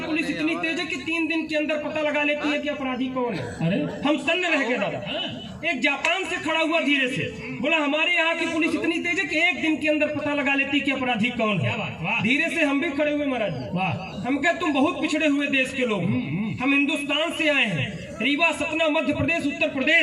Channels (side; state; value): both; identical; correlation 1.00